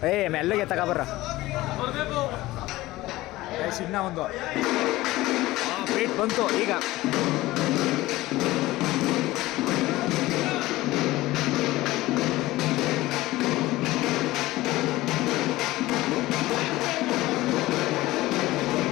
ಮೆಲ್ಲಗೆ ತಗೊಬರ್ರ. ಇನ್ನ ಒಂದು ಪ್ಲೇಟ್ ಬಂತು ಈಗ.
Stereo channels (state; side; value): quieter; right; 18.0 dB